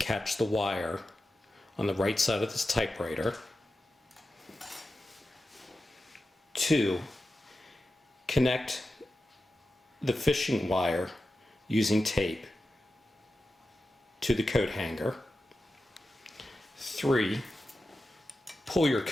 the wire on the right side of this typewriter. 2, connect the fishing wire using tape to the coat hanger. 3, pull your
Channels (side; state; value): both; normal; correlation 0.92